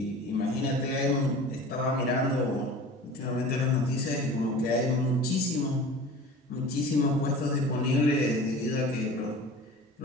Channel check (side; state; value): both; normal; correlation 0.39